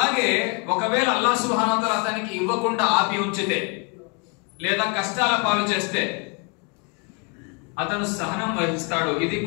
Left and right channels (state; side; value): quieter; right; 35.2 dB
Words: ఒకవేళ అల్లాహ్ సుబ్హానహు వ తఆలా అతనికి ఇవ్వకుండా ఆపి ఉంచితే లేదా కష్టాల పాలు చేస్తే అతను సహనం వహిస్తాడు. ఇది